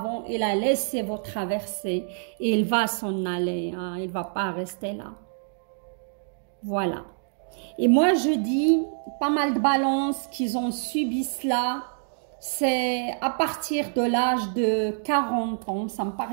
et la laisser vous traverser. Et il va s'en aller, hein, il ne va pas rester là. Voilà. Et moi, je dis, pas mal de balances qu'ils ont subi cela, c'est à partir de l'âge de 40 ans, ça me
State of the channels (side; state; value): left; silent; digital silence